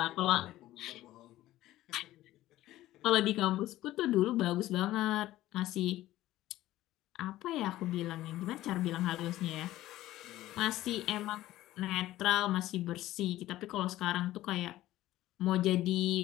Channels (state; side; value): quieter; right; 15.3 dB